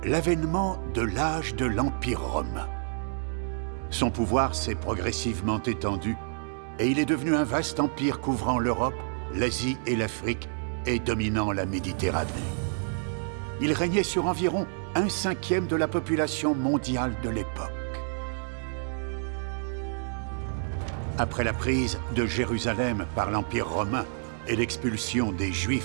l'avènement de l'âge de l'Empire romain. Son pouvoir s'est progressivement étendu et il est devenu un vaste empire couvrant l'Europe, l'Asie et l'Afrique et dominant la Méditerranée. Il régnait sur environ 1/5 de la population mondiale de l'époque. Après la prise de Jérusalem par l'Empire romain et l'expulsion des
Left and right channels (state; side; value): silent; left; digital silence